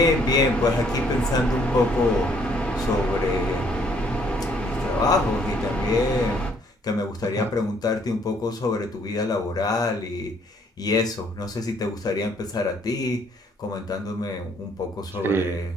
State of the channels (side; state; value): both; normal; correlation 0.65